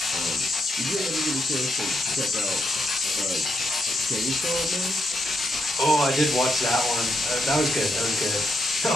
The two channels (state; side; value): normal; both; correlation 0.81